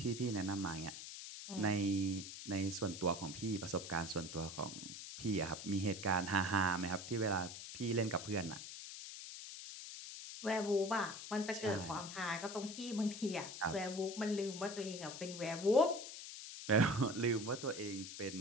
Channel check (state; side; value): noise; left; hiss, 10 dB below the sound